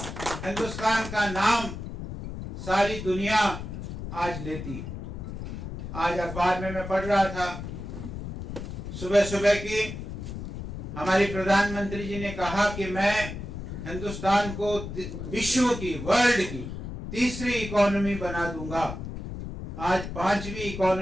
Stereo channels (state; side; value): noise; left; rumble, 8 dB below the sound